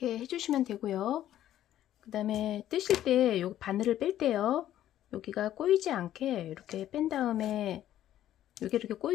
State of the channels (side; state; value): right; quieter; 12.3 dB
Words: 해주시면 되고요. 그 다음에 뜨실 때 요 바늘을 뺄 때요. 여기가 꼬이지 않게 이렇게 뺀 다음에 여기 이렇게